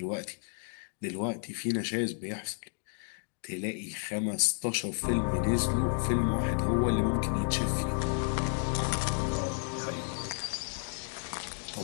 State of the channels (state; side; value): silent; right; 56 dB below the other